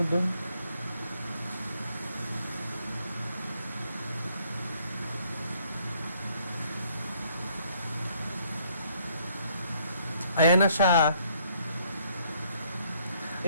Ayan na siya.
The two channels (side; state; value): both; inverted; correlation -0.66